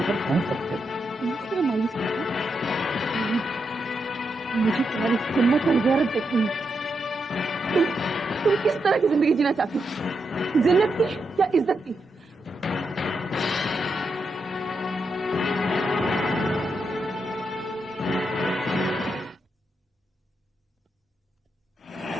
पर पहुंच सकते हैं। मुझे तुम्हारी हिम्मत और गैरत देखनी है। तुम किस तरह की जिंदगी जीना चाहती हो? जिन्नत की या इज्जत की?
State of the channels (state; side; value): normal; both; correlation 0.83